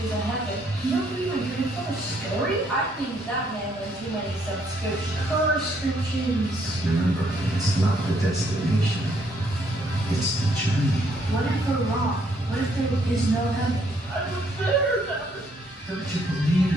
in heaven? You don't believe my grandfather's story? I think that man had too many subscriptions. Remember, it's not the destination, it's the journey. What if we're wrong? What if there is no heaven? Don't you believe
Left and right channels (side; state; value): both; normal; correlation 0.69